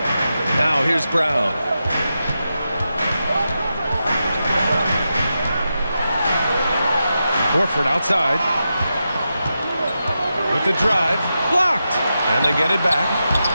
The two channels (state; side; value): inverted; both; correlation -0.89